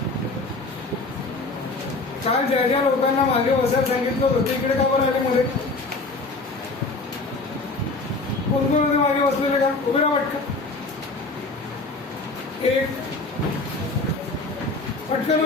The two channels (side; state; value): right; quieter; 3.4 dB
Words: काल ज्या ज्या लोकांना मागे बसायला सांगितलं होतं ते इकडे का बरं आले मध्ये? कोण कोण होते मागे बसलेले का? उभे राहा पटकन. एक पटकन